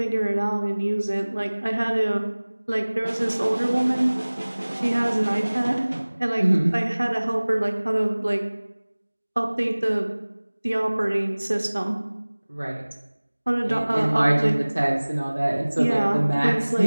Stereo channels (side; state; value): both; inverted; correlation -1.00